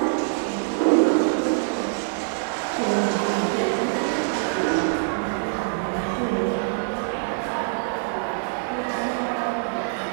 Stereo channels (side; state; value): left; silent; digital silence